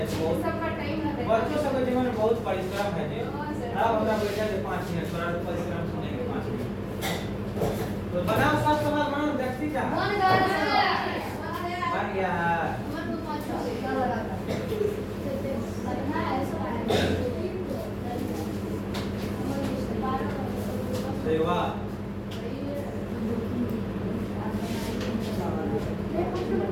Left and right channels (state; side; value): identical; both; correlation 1.00